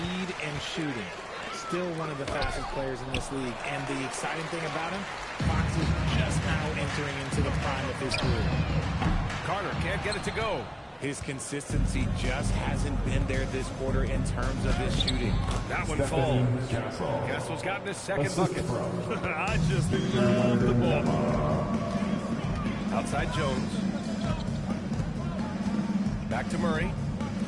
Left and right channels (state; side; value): identical; both; correlation 1.00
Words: and shooting. Still one of the fastest players in this league. And the exciting thing about him, Fox is just now entering into the prime of his career. Carter can't get it to go. His consistency just hasn't been there this quarter in terms of his shooting. That one falls. Castle's gotten his second bucket. I just love the ball. Outside Jones. Back to Murray.